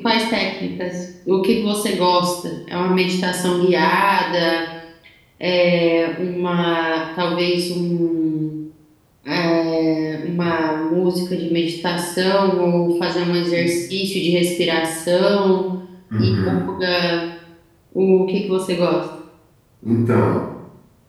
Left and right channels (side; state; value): both; identical; correlation 1.00